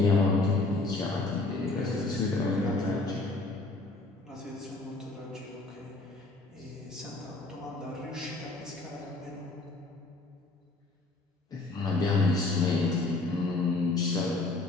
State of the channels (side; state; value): right; quieter; 3.2 dB